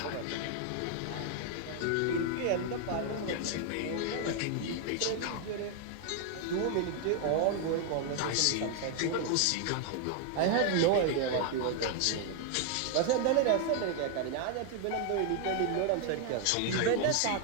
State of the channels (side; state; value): both; different; correlation 0.00